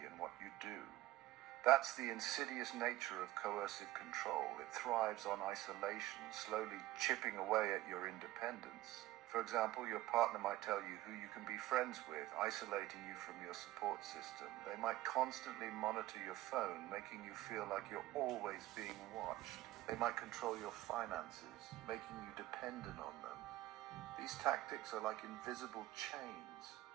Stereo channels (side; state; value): left; quieter; 16.4 dB